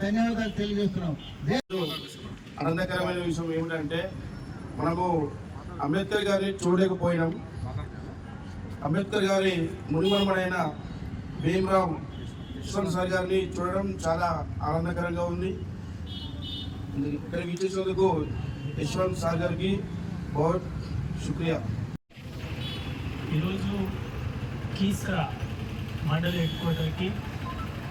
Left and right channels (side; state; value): both; identical; correlation 1.00